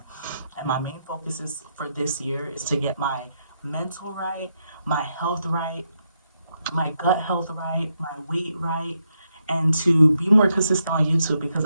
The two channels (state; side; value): inverted; both; correlation -0.81